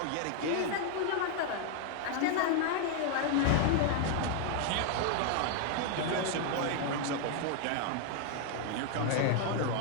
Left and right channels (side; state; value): both; different; correlation 0.00